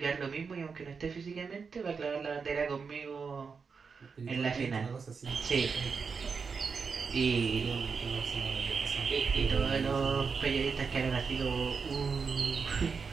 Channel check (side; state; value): left; quieter; 5.4 dB